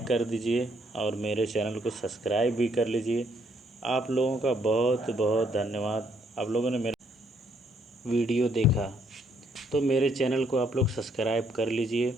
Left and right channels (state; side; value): normal; both; correlation 0.70